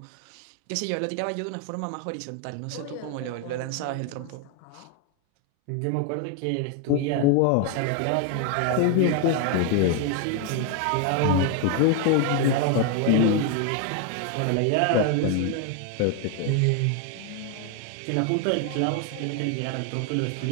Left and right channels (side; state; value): both; different; correlation 0.01